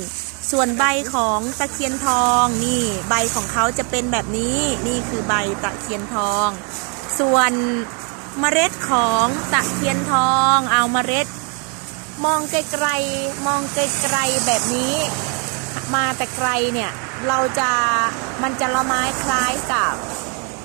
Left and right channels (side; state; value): left; quieter; 36.7 dB